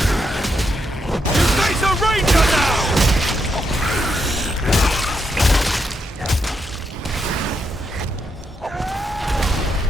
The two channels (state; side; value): normal; both; correlation 0.80